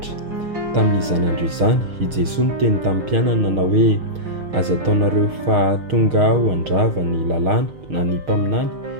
Tamin'izany andro izany, i Jesoa niteny tamin'ny mpianany nanao hoe: aza ataonareo fa tonga aho handrava ny lalàna na ny mpaminany,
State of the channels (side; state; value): left; late; 6.5 ms